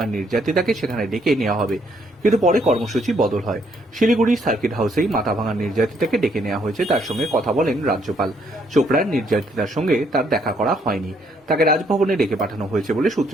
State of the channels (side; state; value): both; normal; correlation 0.70